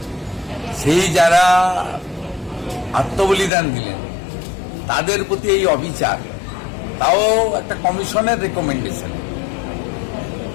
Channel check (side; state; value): right; drops out; at 3.5 s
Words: সেই যারা আত্মবলিদান দিলেন তাদের প্রতি এই অবিচার, তাও একটা কমিশনের রেকমেন্ডেশন,